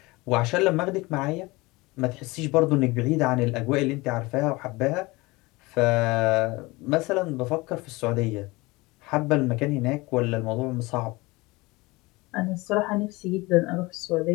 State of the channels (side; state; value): right; quieter; 22.8 dB